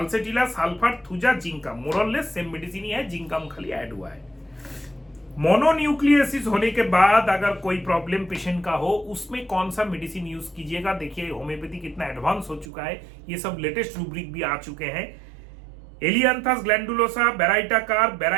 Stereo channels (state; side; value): drops out; left; at 12.7 s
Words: sulphur, thuja, जिंकम, मोरलेस same medicine ही है, जिंकम खाली ऐड हुआ है। मोनोन्यूक्लियोसिस होने के बाद अगर कोई प्रॉब्लम पेशेंट का हो, उसमें कौन सा मेडिसिन यूज कीजिएगा? देखिए होम्योपैथी कितना एडवांस हो चुका है, ये सब लेटेस्ट रूब्रिक भी आ चुके हैं। एलियांथस ग्लैंडुलोसा, बेराइटाकार,